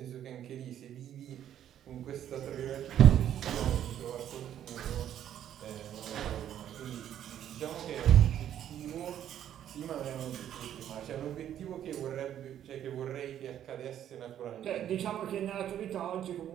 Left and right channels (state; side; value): quieter; left; 10.6 dB